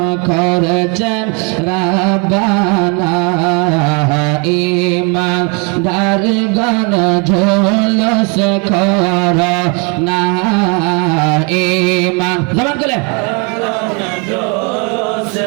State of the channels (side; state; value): left; quieter; 33.3 dB